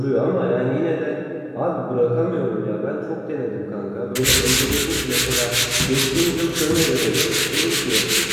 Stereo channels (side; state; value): both; identical; correlation 1.00